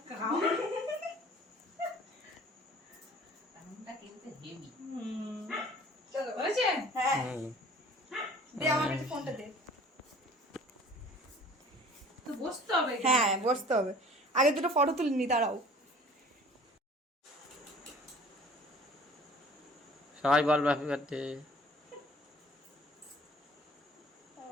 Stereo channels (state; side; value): normal; both; correlation 0.49